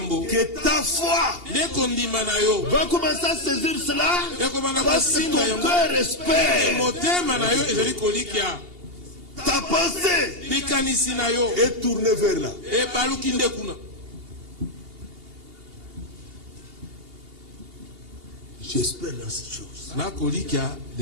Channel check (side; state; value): left; late; 2.8 ms